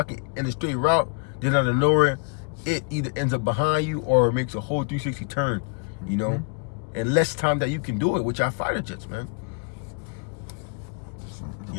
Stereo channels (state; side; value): quieter; right; 35.6 dB